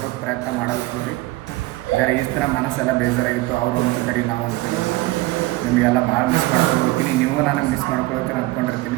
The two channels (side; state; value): left; quieter; 19.5 dB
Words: ಪ್ರಯತ್ನ ಮಾಡಲ್ತೀವಿ. ಜರ ಈಸ್ ಥರ ಮನಸ್ಸೆಲ್ಲ ಬೇಜಾರಾಗಿತ್ತು, ಅವ್ರು ಒಂದು ಕಡೆ ನಾವು ಅಂತೀವಿ. ನಿಮಗೆಲ್ಲ ಭಾಳ ಮಿಸ್ ಮಾಡ್ಕೊಳ್ತೀನಿ, ನೀವು ನನಗೆ ಮಿಸ್ ಮಾಡ್ಕೊಳ್ತೀನಿ